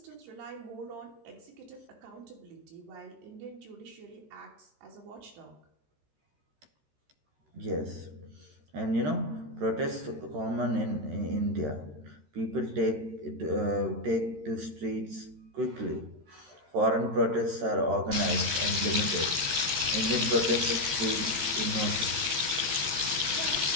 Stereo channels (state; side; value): late; left; 13 ms